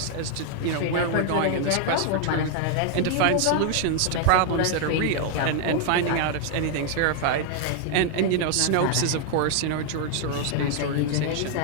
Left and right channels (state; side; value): different; both; correlation 0.00